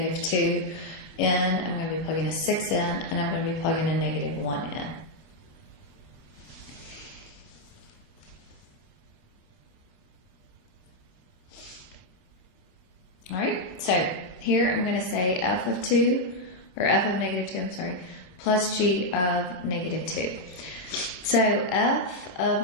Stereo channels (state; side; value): late; right; 27 ms